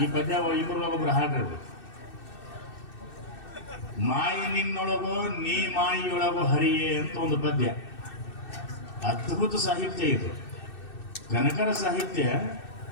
ಈ ಪದ್ಯ ಇಬ್ಬರೊಳಗೊಬ್ರು ಹಾಡ್ರಿ. ಮಾಯಿ ನಿನ್ನೊಳಗೋ ನೀ ಮಾಯಿಯೊಳಗೋ ಹರಿಯೇ ಅಂತ ಒಂದು ಪದ್ಯ. ಅದ್ಭುತ ಸಾಹಿತ್ಯ ಇದು. ಕನಕರ ಸಾಹಿತ್ಯ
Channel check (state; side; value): late; right; 2.6 ms